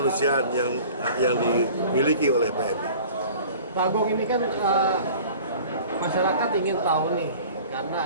yang dimiliki oleh PMI. Pak Agung, ini kan masyarakat ingin tahu nih, karena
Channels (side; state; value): both; inverted; correlation -0.45